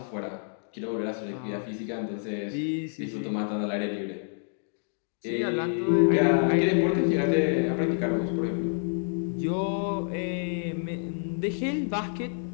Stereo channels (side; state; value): right; silent; digital silence